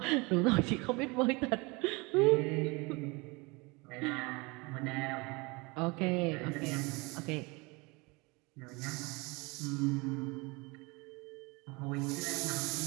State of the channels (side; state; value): left; quieter; 26.5 dB